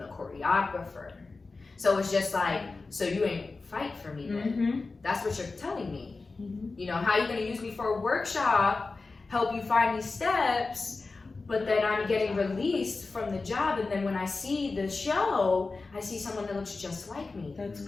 choreographer. So it's just like, so you ain't fight for me then. That's what you're telling me. How you gonna use me for a workshop, help you find these steps, but then I'm getting released from the job, and then when I see the show, I see someone that looks just like me. That's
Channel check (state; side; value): quieter; right; 3.8 dB